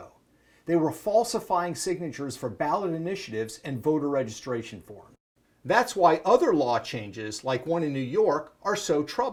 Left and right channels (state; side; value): identical; both; correlation 1.00